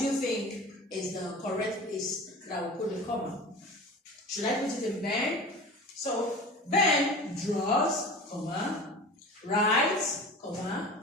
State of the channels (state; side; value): normal; both; correlation 0.36